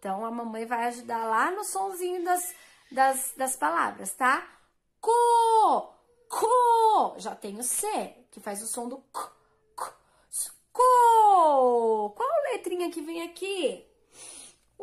a mamãe vai ajudar lá no sonzinho das palavras, tá? Co. Já tem o C, que faz o som do co. Qual letrinha que vem aqui?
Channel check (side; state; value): both; identical; correlation 1.00